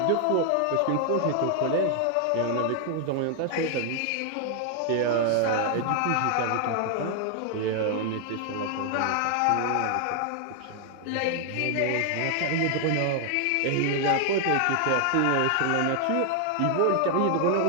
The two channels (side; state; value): both; different; correlation 0.00